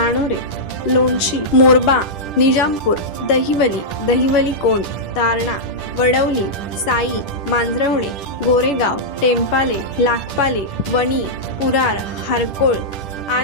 लोणशी, मोरबा, निजामपूर, दहिवली कोंड, तारणा, वडवली, साई, मांजरवणे, गोरेगाव, टेंपाले, लाखपाले, वणी, पुरार, हारकोळ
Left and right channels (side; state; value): right; late; 10 ms